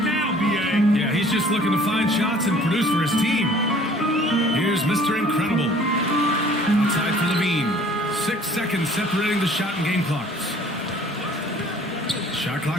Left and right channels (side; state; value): both; normal; correlation 0.53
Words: now, B.A. Yeah, he's just looking to find shots and produce for his team. Here's Mr. Incredible. Outside for Levine. 6 seconds separating the shot and game clocks. Shot